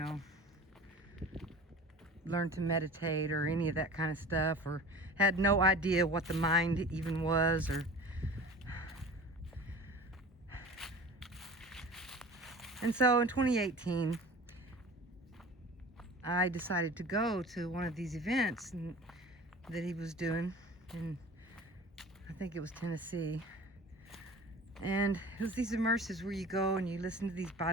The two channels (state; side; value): normal; both; correlation 0.40